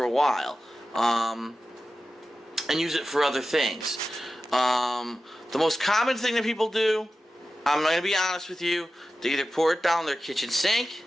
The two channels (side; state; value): both; normal; correlation 0.94